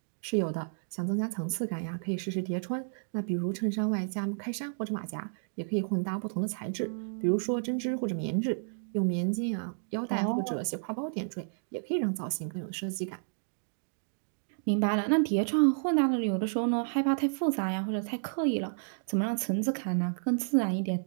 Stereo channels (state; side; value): silent; left; digital silence